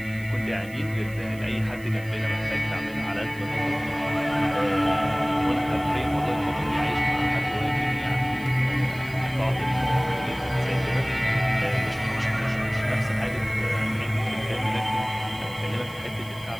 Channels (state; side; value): noise; right; hiss, 22 dB below the sound